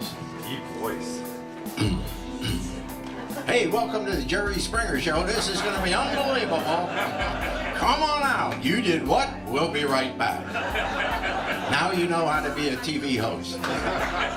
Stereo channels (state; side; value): identical; both; correlation 1.00